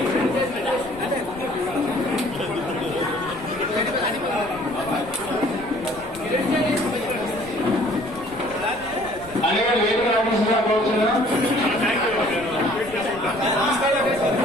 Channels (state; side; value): noise; left; rumble, 20 dB below the sound